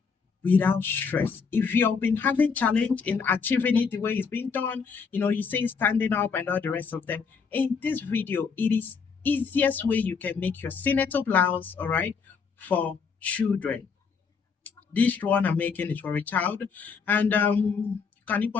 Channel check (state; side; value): quieter; right; 5.6 dB